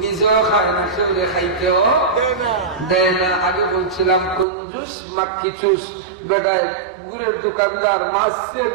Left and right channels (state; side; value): drops out; left; at 4.5 s